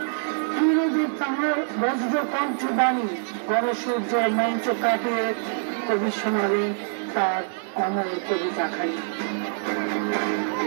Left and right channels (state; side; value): silent; left; 62 dB below the other